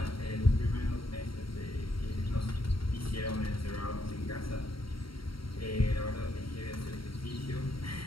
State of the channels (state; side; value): late; right; 0.74 ms